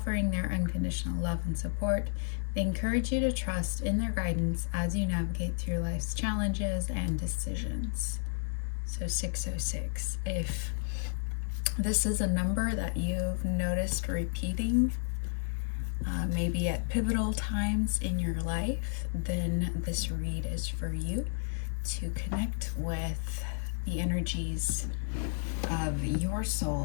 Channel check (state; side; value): silent; right; digital silence